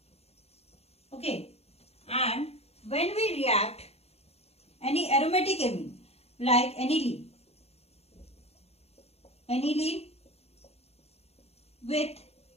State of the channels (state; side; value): late; right; 0.30 ms